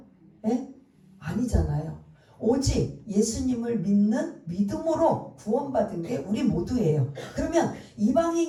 예? 아니잖아요. 오직 예수님을 믿는 믿음으로 구원받은 게 우리 모두예요. 그러면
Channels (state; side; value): identical; both; correlation 1.00